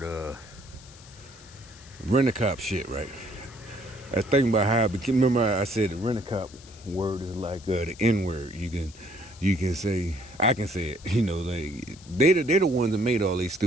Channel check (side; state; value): left; noise; hiss, 21 dB below the sound